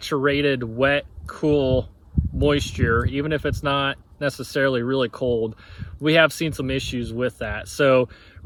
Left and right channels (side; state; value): both; identical; correlation 1.00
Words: wet, cool moisture, even if it's not necessarily really cold, we have seen some issues with that. So